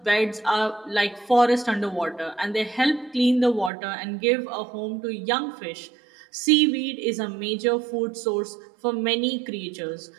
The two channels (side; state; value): left; drops out; at 3.7 s